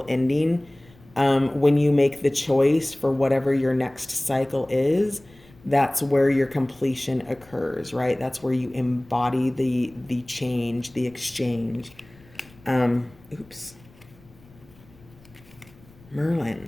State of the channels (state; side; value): noise; left; rumble, 26 dB below the sound